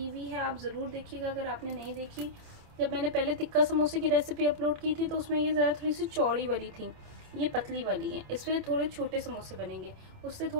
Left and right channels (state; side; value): late; left; 27 ms